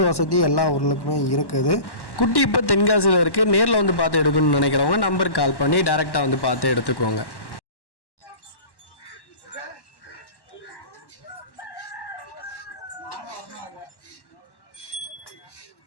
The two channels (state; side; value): late; right; 1.1 ms